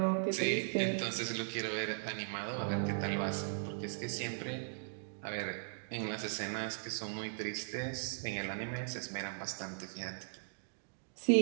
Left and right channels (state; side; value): silent; left; digital silence